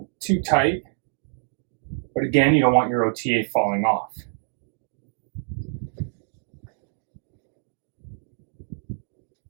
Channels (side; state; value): left; silent; digital silence